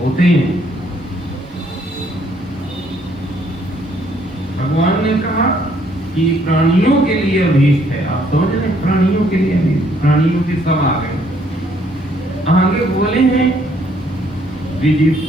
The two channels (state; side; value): normal; both; correlation 0.66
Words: हैं। भगवान ने कहा कि प्राणियों के लिए अभीष्ट है, आप समझ रहे, प्राणियों के लिए अभीष्ट, प्राणियों के सब आ गए। आगे बोले हैं